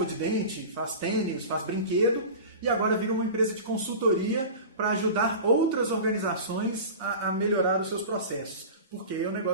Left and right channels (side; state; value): both; inverted; correlation -0.33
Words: de dente, faz tênis, faz brinquedo, e agora vira uma empresa de consultoria para ajudar outras organizações a melhorar os seus processos, porque é o